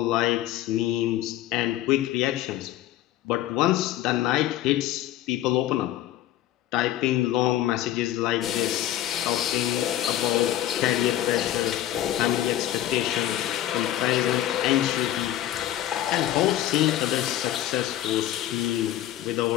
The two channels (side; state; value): right; quieter; 13.2 dB